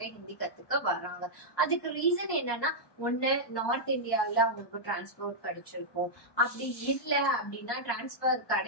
ஹிந்தி கத்துக்க வர்றாங்க. அதுக்கு ரீசன் என்னன்னா, ஒண்ணு நார்த் இந்தியாவில அவங்களுக்கு டிரான்ஸ்போர்ட் கிடைச்சிருக்கும். அப்படி இல்லை அப்படின்னா டிரான்ஸ்பர்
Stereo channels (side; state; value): right; late; 1.2 ms